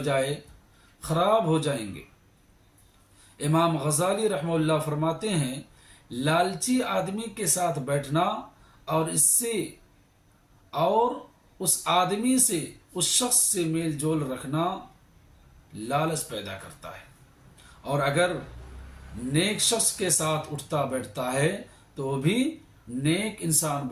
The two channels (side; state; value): both; identical; correlation 1.00